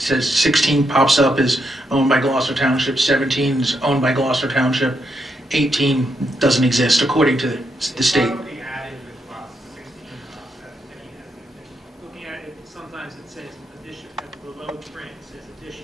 says 16 pops up as owned by Gloucester Township, 17 is owned by Gloucester Township, 18 doesn't exist according to the state. Probably added with lots 16, lot 17 as an additional. Looking at it, sometimes it says addition, at the below print, it says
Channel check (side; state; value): both; normal; correlation 0.81